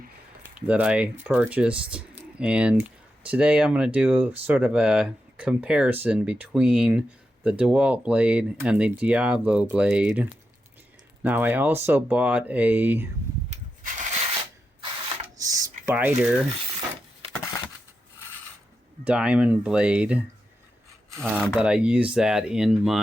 that I purchased. And today I'm going to do sort of a comparison between the DeWalt blade and the Diablo blade. Now I also bought a Spyder diamond blade, but I use that in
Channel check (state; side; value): normal; both; correlation 0.88